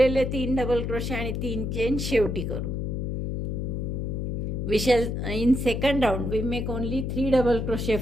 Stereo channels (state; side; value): noise; left; hum, 2 dB below the sound